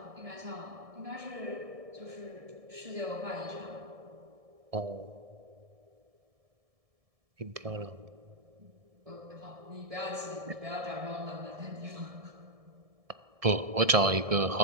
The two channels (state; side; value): late; left; 1.7 ms